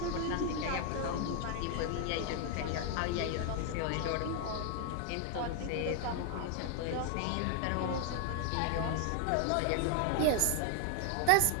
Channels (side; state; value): both; different; correlation 0.00